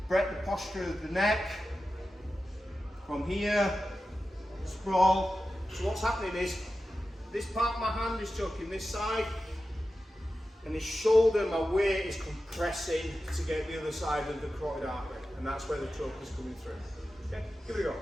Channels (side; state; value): both; normal; correlation 0.92